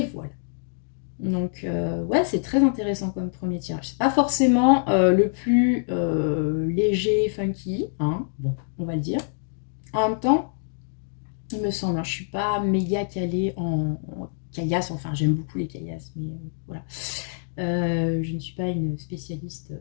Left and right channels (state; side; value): silent; right; digital silence